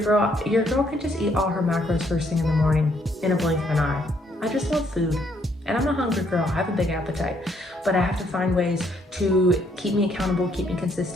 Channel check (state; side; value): normal; both; correlation 0.70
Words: can just eat all her macros first thing in the morning in a blink of an eye. I just love food, and I'm a hungry girl. I have a big appetite, but I have to find ways to keep me accountable, keep me